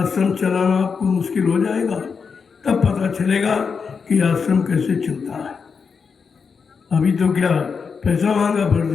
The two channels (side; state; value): right; quieter; 5.7 dB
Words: चलाना आपको मुश्किल हो जाएगा, तब पता चलेगा कि आश्रम कैसे चलता है। अभी तो क्या पैसा मांगा,